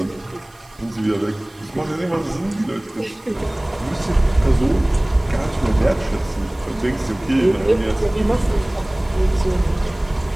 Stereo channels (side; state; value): right; noise; hiss, 28 dB below the sound